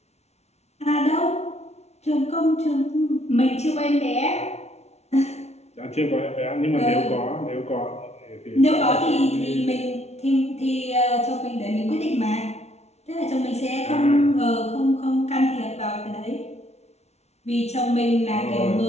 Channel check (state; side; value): late; right; 0.31 ms